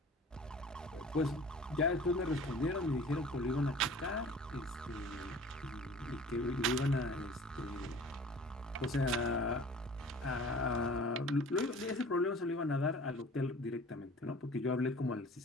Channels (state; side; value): normal; both; correlation 0.45